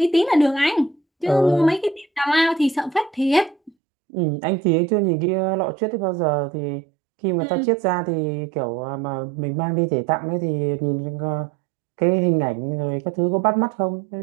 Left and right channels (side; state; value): left; drops out; at 3.7 s